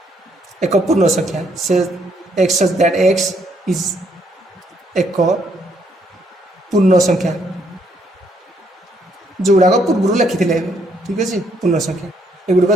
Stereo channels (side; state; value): both; normal; correlation 0.71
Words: ଏକ ପୂର୍ଣ୍ଣ ସଂଖ୍ୟା ସେ X such that X is ଏକ ପୂର୍ଣ୍ଣ ସଂଖ୍ୟା ଯେଉଁଗୁଡ଼ାକ ପୂର୍ବରୁ ଲେଖିଥିଲେ ଠିକ୍ ଅଛି ପୂର୍ଣ୍ଣ ସଂଖ୍ୟା ଏଗୁଡ଼ିକ